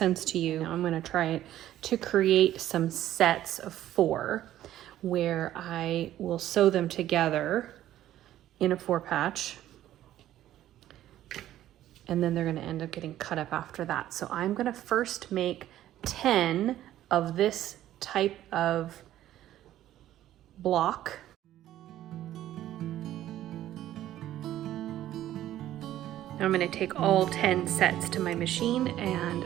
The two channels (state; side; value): quieter; left; 13.0 dB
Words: to you. Now I'm going to try it to create some sets of 4 where I will sew them together in a 4-patch, and then they're going to end up getting cut up after that. So I'm going to first make 10 of this type of block. Now I'm going to take all 10 sets to my machine and